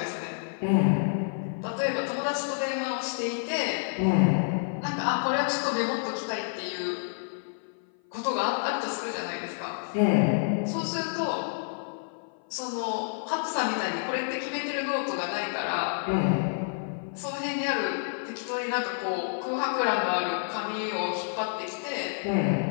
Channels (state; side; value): silent; right; 55 dB below the other